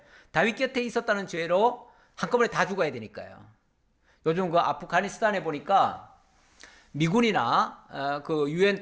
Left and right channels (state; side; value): identical; both; correlation 1.00